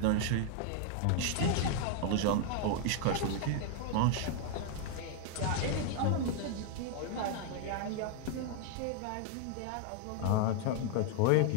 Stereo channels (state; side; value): different; both; correlation 0.00